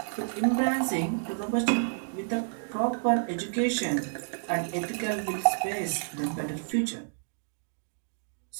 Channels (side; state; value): left; silent; digital silence